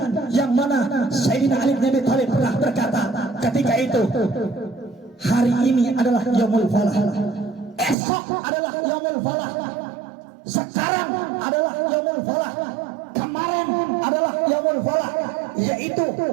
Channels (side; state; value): left; drops out; at 8.0 s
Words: yang mana Sayyidina Ali bin Abi Thalib pernah berkata ketika itu, hari ini adalah yaumul falah, esok adalah yaumul falah, sekarang adalah yaumul falah, kemarin adalah yaumul falah, yaitu